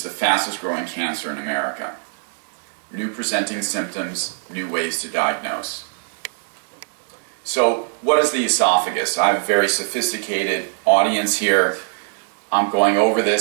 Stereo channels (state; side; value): silent; left; digital silence